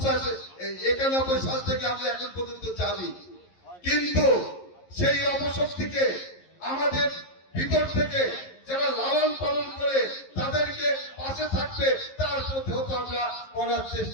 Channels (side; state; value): right; late; 11 ms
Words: সাল থেকে আমরা এখন পর্যন্ত জানি। কিন্তু সেই অপশক্তিকে আমাদের ভিতর থেকে যারা লালন পালন করে তাদেরকে পাশে থাকবে, তার প্রতি আমরা করার